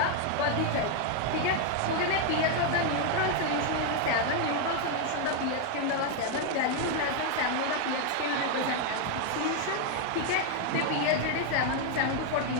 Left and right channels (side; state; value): both; different; correlation 0.00